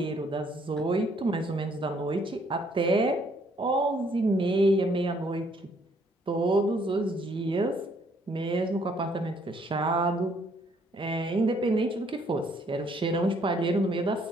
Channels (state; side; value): normal; both; correlation 0.66